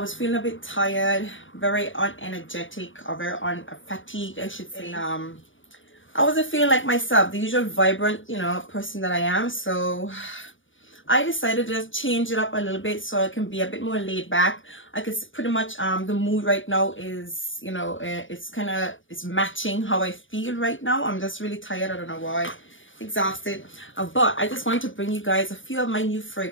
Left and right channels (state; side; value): late; right; 0.57 ms